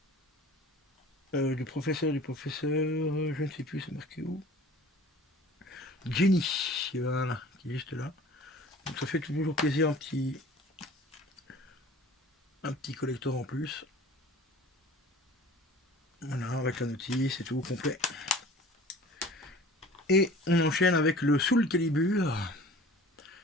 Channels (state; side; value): normal; both; correlation 0.45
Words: Du professeur, je ne sais plus, c'est marqué où. Jenny, voilà, qui est juste là. Donc ça fait toujours plaisir, un petit collector en plus. Voilà, avec la notice et tout, complet. Et on enchaîne avec le Soul Calibur